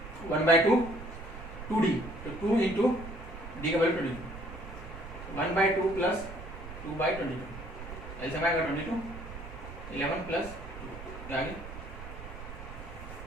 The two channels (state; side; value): noise; right; rumble, 11 dB below the sound